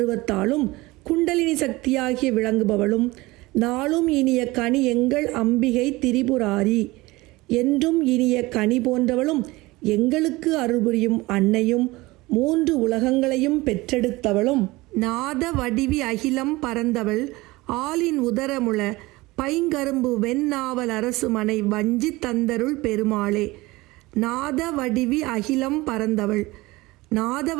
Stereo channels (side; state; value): left; quieter; 20.8 dB